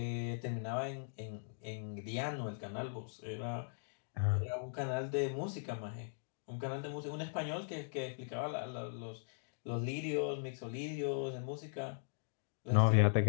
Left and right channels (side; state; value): right; silent; digital silence